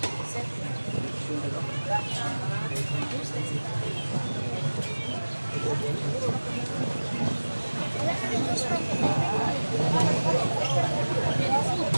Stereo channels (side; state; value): both; inverted; correlation -1.00